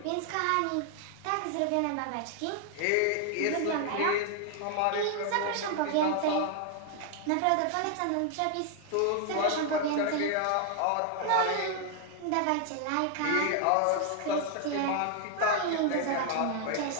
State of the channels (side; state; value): both; different; correlation 0.00